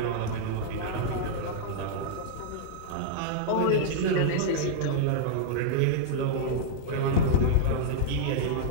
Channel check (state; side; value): different; both; correlation -0.02